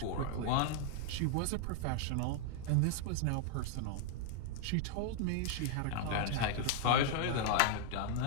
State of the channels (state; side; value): different; both; correlation -0.01